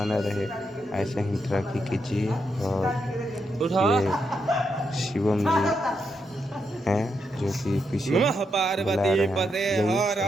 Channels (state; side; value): normal; both; correlation 0.82